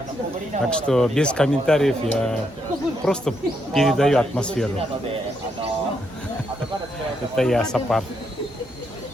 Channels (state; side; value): normal; both; correlation 0.78